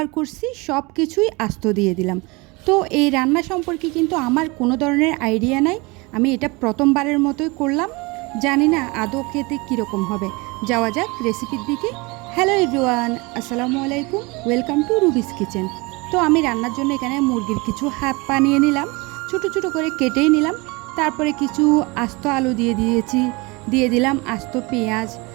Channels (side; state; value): left; quieter; 26.0 dB